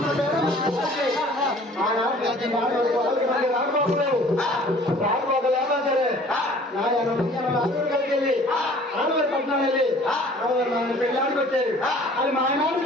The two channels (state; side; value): normal; both; correlation 0.51